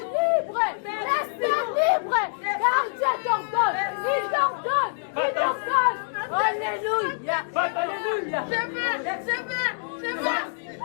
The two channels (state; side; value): silent; right; digital silence